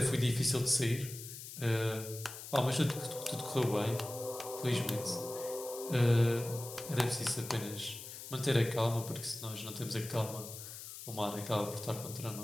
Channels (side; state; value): left; noise; hiss, 11 dB below the sound